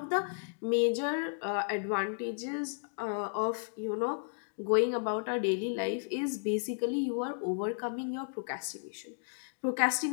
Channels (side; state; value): right; silent; digital silence